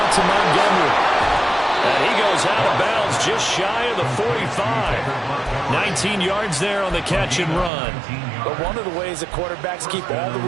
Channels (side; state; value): left; drops out; at 7.7 s